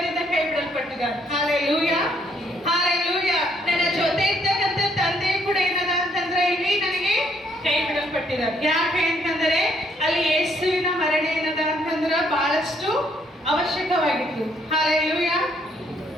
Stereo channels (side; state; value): both; normal; correlation 0.69